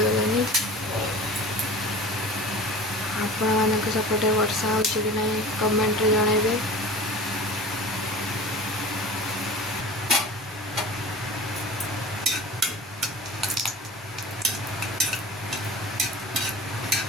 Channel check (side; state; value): both; normal; correlation 0.38